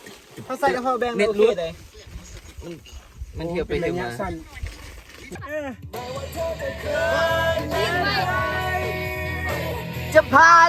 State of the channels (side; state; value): both; identical; correlation 1.00